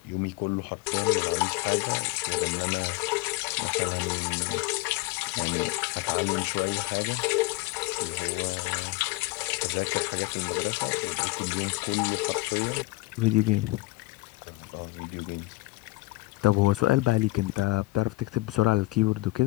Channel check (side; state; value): right; quieter; 21.4 dB